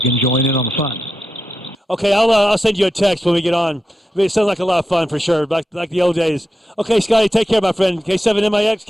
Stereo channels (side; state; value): both; normal; correlation 0.88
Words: join in on the fun. Okay, I'll send you a text when we get on. I mean, it sounds like a lot of fun for sure, like the old days. Okay, Scotty, take care, my friend. K7MIX,